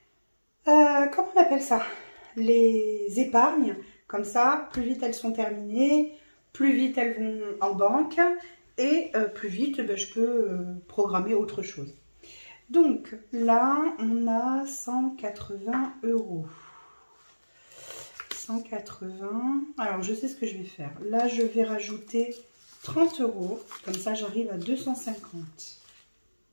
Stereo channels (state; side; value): inverted; both; correlation -1.00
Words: comment on appelle ça? Les épargnes. Comme ça, plus vite elles sont terminées, plus vite elles vont en banque et plus vite je peux programmer autre chose. Donc là, on a 180 €. 180. Alors, je sais ce que je vais faire. Là, je vais rajouter 30 €. Comme ça, j'arrive à 250.